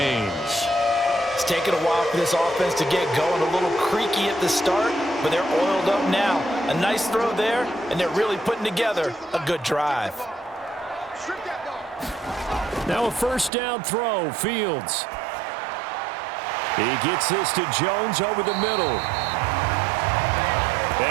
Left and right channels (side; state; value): left; drops out; at 13.5 s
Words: It's taken a while for this offense to get going, a little creaky at the start, but they're oiled up now. A nice throw there, and they're really putting together a good drive. Now a first down throw, Fields. He gets this to Jones over the middle.